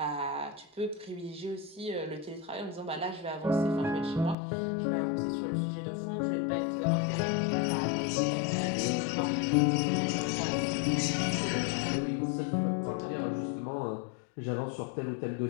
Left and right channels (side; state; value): right; drops out; at 4.4 s